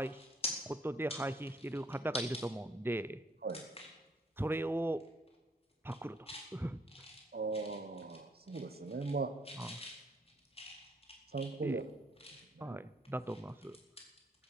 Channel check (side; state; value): both; normal; correlation 0.66